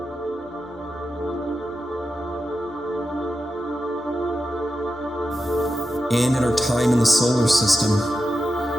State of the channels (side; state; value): both; normal; correlation 0.90